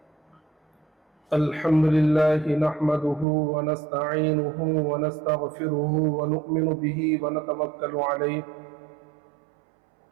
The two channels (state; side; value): drops out; left; at 3.2 s